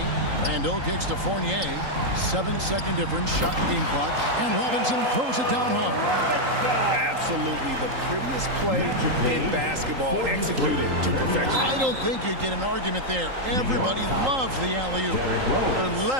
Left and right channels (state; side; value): late; left; 3.8 ms